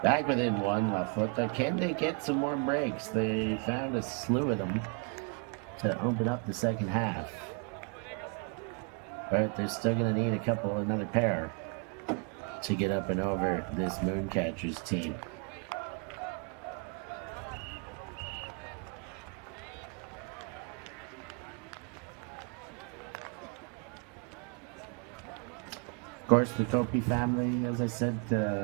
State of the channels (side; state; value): left; quieter; 37.5 dB